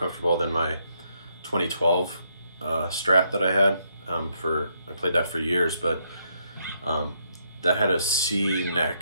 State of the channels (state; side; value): inverted; both; correlation -0.75